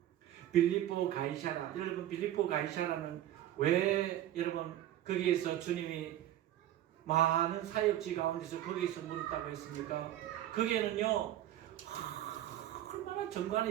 빌립보 가이사라. 여러분, 빌립보 가이사라는 왜 여러분 거기에서 주님이 많은 사역지 가운데서 거기에서 물었다고 했습니까? 거기에는요 얼마나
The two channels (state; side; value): quieter; left; 12.6 dB